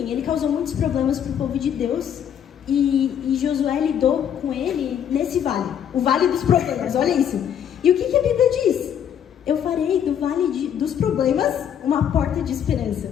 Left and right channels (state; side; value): quieter; right; 9.0 dB